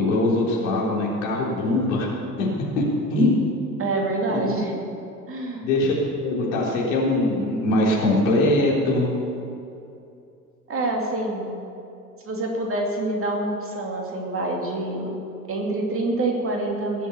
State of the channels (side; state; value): both; normal; correlation 0.31